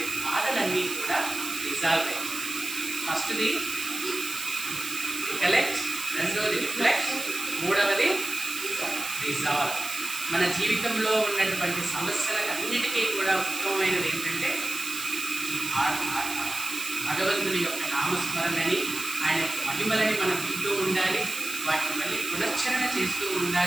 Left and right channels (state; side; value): noise; right; hiss, 7 dB below the sound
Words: బాధలన్నీ కూడా రిజాల్వ్ అయ్యాయి. ఫస్ట్ది రికలెక్ట్, రెండవది రిఫ్లెక్ట్, మూడవది రిజాల్వ్. మన జీవితంలో ఉన్నటువంటి సమస్యలకు అన్నిటికీ కూడా ఉత్తమమైనది ఏంటంటే భగవంతుని యొక్క నామస్మరణని, ఆయన యొక్క మహిమలని మనం వింటూ ఉండాలి, వాటిని మళ్ళీ పునశ్చరణ చేస్తూ